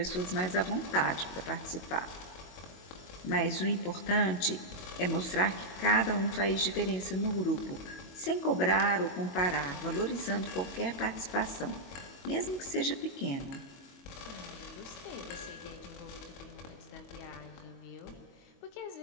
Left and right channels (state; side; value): late; right; 22 ms